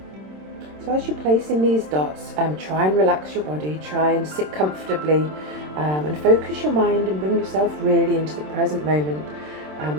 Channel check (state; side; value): late; left; 27 ms